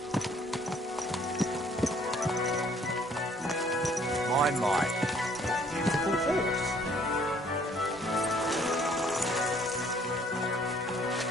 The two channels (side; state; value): both; normal; correlation 0.60